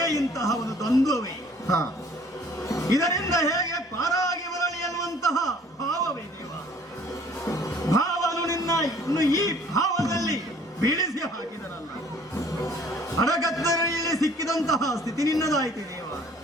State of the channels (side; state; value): both; normal; correlation 0.55